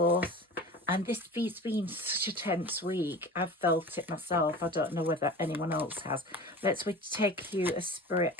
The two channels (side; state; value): both; normal; correlation 0.36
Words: And this has been such a tense week. I've felt it myself. I don't know whether anyone else has. Let's take you a spirit